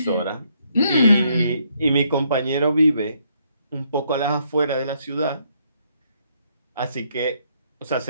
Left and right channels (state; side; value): inverted; both; correlation -0.72